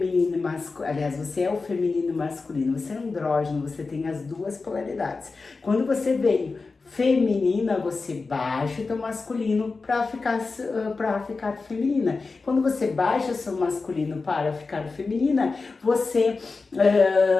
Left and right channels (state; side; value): quieter; right; 4.1 dB